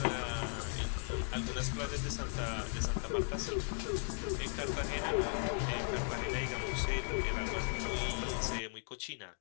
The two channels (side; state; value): right; silent; 53 dB below the other